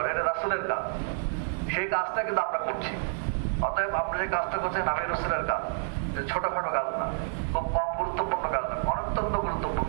এটা রাসূলের কাজ। সেই কাজটা কিন্তু আমরা করছি। অতএব আমরা যে কাজটা করছি নবী রাসূলের কাজ, ছোটখাটো কাজ না, খুব কম গুরুত্বপূর্ণ কাজ না, অত্যন্ত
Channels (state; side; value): silent; left; digital silence